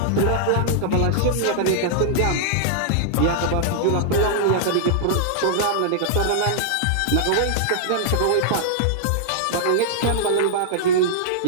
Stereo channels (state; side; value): different; both; correlation -0.01